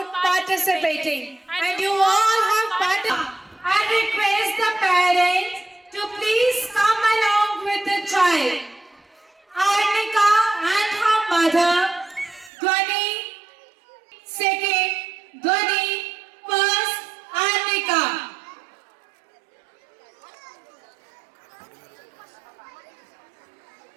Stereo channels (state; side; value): drops out; left; at 12.5 s